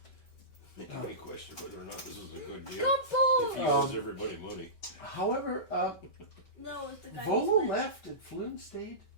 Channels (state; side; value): late; right; 5.2 ms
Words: Make any question whether or not this was a good deal. Couple! If he owes everybody money. However, No, it's the guy. Volo who's left and Flynn stayed.